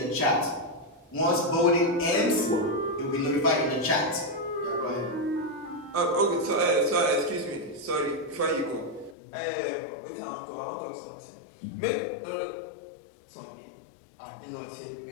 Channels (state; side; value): drops out; right; at 9.2 s